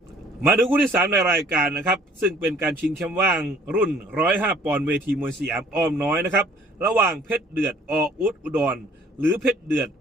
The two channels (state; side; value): normal; both; correlation 0.57